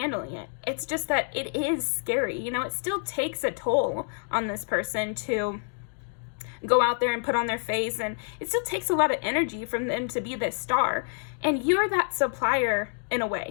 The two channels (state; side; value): silent; right; 60 dB below the other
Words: it. It's just that it is scary. It still takes a toll on this person to go out there and put on their face. And it still takes a lot of energy from them to be this star. And you're that supplier in a